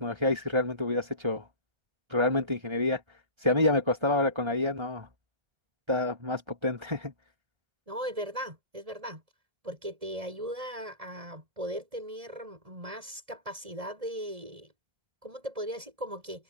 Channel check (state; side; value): late; left; 1.7 ms